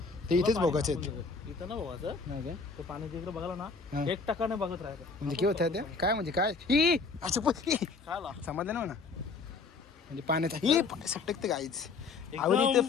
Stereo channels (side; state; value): right; quieter; 4.5 dB